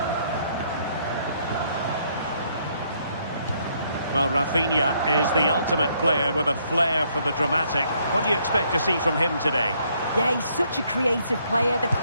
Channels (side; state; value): both; inverted; correlation -0.69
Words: Well, Rafinha is the ultimate player with a flair for the dramatic. What do you expect to see from him today? Yeah, he's such a creative player. The